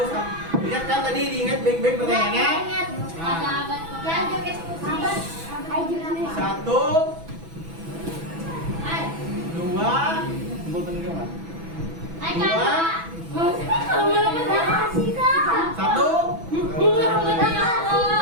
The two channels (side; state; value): left; late; 6.1 ms